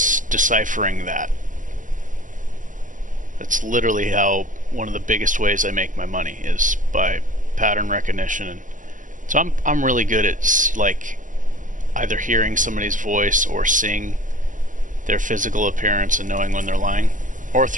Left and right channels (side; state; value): left; late; 0.38 ms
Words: that. That's literally how one of the biggest ways I make my money is by pattern recognition. And so I'm really good at like either hearing somebody's voice or seeing their physical appearance and knowing when they're lying, or